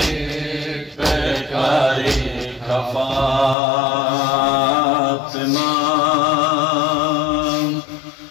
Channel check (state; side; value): drops out; right; at 3.6 s